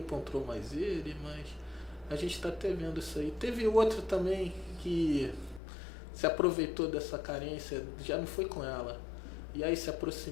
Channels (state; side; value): drops out; right; at 5.6 s